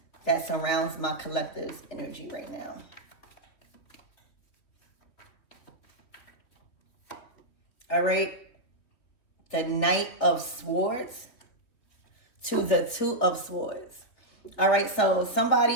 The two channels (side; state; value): right; late; 3.2 ms